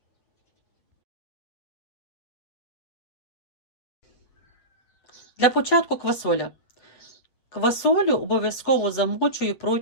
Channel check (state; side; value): late; right; 8.2 ms